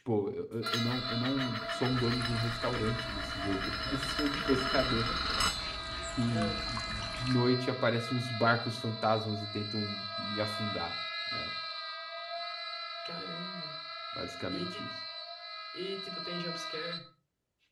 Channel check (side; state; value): both; identical; correlation 1.00